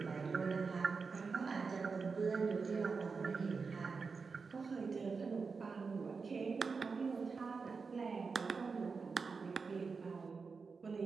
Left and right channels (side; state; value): left; quieter; 4.9 dB